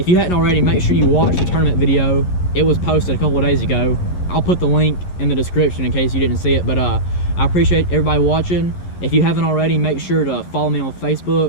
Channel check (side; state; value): right; late; 11 ms